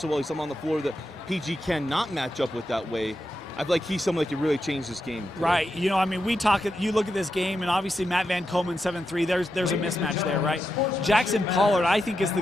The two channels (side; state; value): both; normal; correlation 0.87